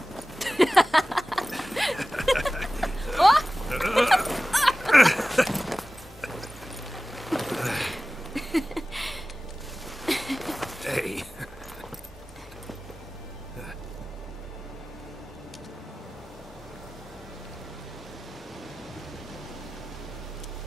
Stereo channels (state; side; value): normal; both; correlation 0.97